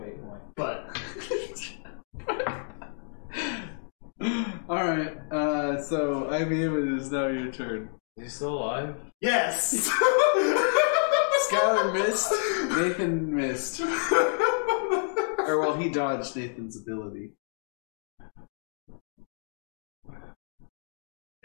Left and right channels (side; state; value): right; silent; digital silence